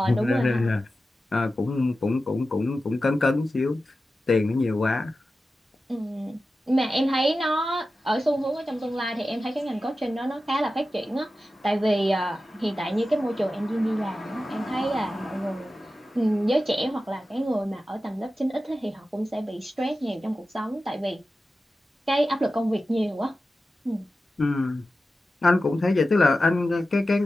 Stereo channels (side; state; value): both; normal; correlation 0.93